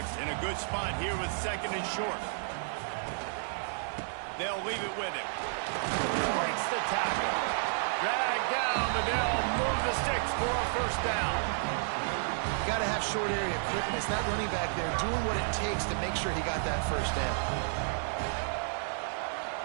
in a good spot here with 2nd and short. They'll leave it with him. Breaks the tackle. Drag down, but they'll move the sticks for a first down. You got to have short area quickness. That running back there doing what it takes to make sure he got that first down.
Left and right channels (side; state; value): left; silent; digital silence